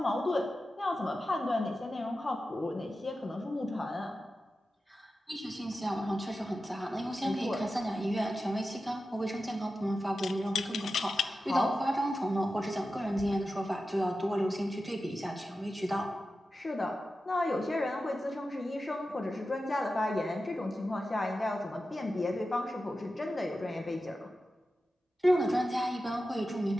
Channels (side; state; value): both; normal; correlation 0.92